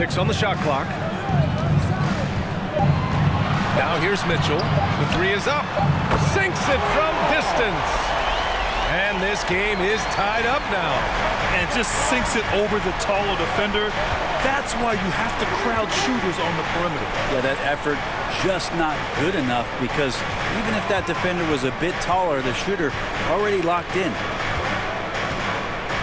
on the shot clock. Now here's Mitchell. The 3 is up. Sinks it from distance. And this game is tied up now. And just sinks it over the taller defender. That's why you have to crowd shooters on the perimeter. Yeah, that effort just not good enough, because even if that defender was a bit taller, the shooter already locked in.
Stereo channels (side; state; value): both; identical; correlation 1.00